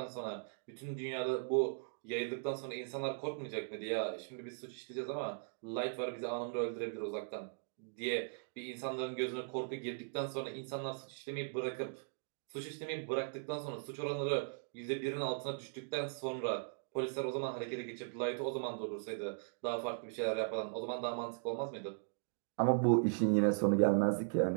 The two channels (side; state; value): left; silent; digital silence